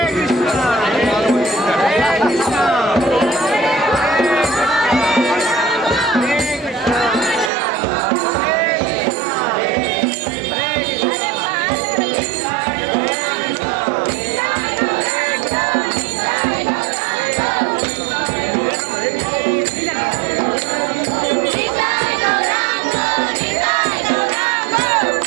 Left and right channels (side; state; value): left; drops out; at 7.5 s